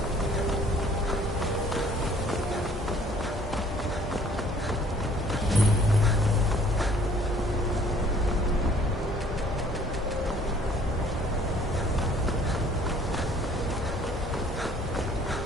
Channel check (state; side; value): normal; both; correlation 0.57